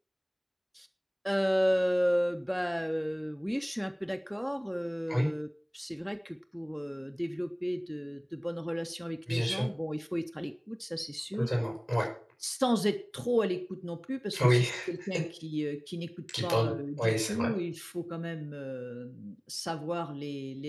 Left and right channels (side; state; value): both; identical; correlation 1.00